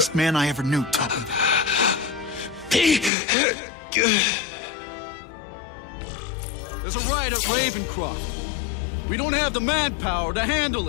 man I ever knew taught me that. There's a riot at Ravencroft. We don't have the manpower to handle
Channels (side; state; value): right; drops out; at 3.1 s